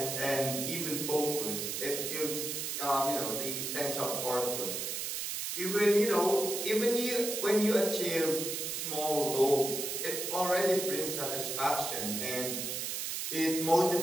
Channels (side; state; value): right; noise; hiss, 3 dB below the sound